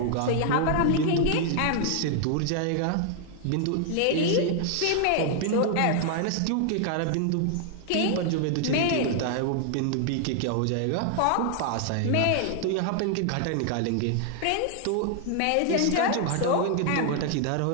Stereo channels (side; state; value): both; different; correlation 0.00